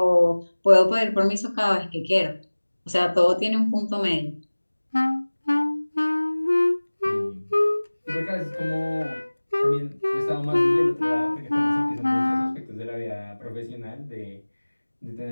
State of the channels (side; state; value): both; inverted; correlation -1.00